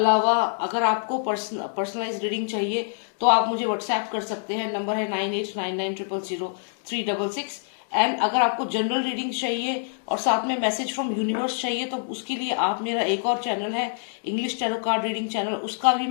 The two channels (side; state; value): right; silent; digital silence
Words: अगर आपको पर्सनलाइज रीडिंग चाहिए तो आप मुझे व्हाट्सएप कर सकते हैं, नंबर है 9899000366। एंड अगर आपको जनरल रीडिंग चाहिए और साथ में मैसेज फ्रॉम यूनिवर्स चाहिए तो उसके लिए आप मेरा एक और चैनल है English tarot card reading channel, उसका भी